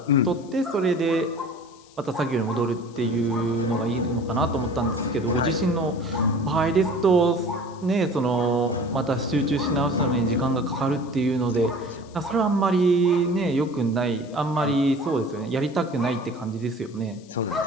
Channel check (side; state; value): left; noise; hiss, 26 dB below the sound